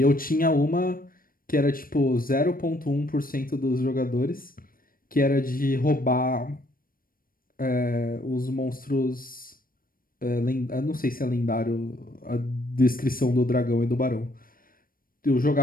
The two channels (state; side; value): late; right; 0.41 ms